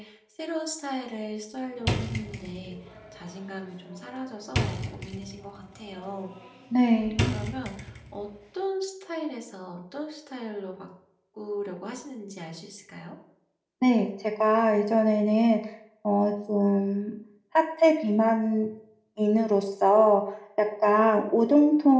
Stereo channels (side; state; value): both; identical; correlation 1.00